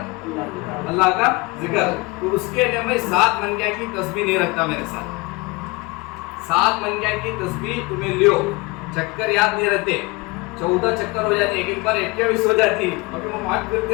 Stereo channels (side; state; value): right; quieter; 25.1 dB